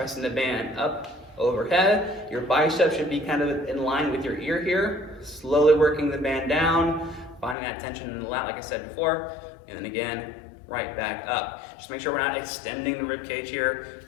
the band up overhead. Your bicep should be kind of in line with your ear here. Slowly working the band down, finding that tension in the lat like I said before, and then again, right back up. Just make sure we're not extending the rib cage here,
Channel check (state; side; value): drops out; right; at 7.6 s